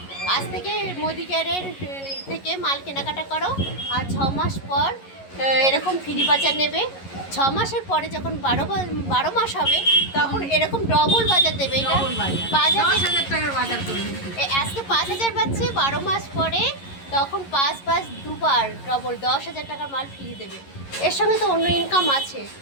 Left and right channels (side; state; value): right; late; 11 ms